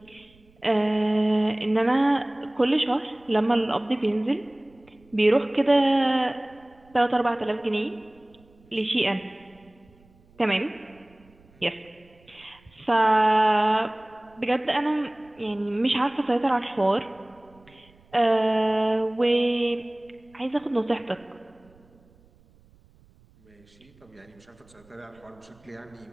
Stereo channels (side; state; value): right; noise; rumble, 30 dB below the sound